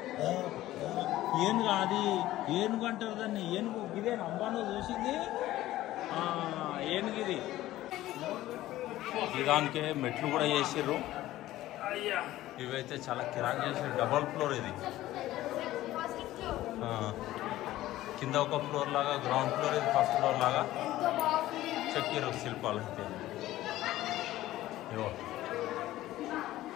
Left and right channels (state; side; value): quieter; right; 15.3 dB